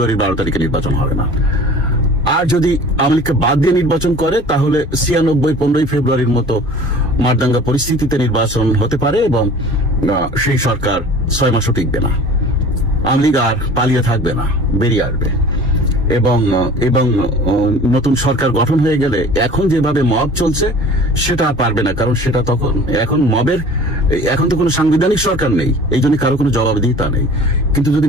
12 তারিখে নির্বাচন হবে না। আর যদি আওয়ামী লীগকে বাদ দিয়ে নির্বাচন করে তাহলে 96-15 ফেব্রুয়ারির মতো মারদাঙ্গা পরিস্থিতিতে নির্বাচন হতে পারে এবং সেই সরকার 6 মাসও টিকবে না। আওয়ামী লীগ আর পালিয়ে থাকবে না, বেরিয়ে আসবে এবং নতুন সরকার গঠন হয়ে গেলে এখন যেভাবে মব চলছে সেটা আর পারবে না, কারণ সেটা এখন তো কোনো সাংবিধানিক সরকার নেই, এই জন্য কারো কোনো জবাবদিহিতা নেই। কিন্তু যদি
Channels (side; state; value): both; normal; correlation 0.44